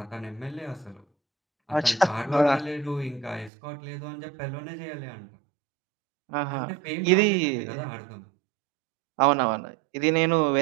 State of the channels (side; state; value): left; drops out; at 3.5 s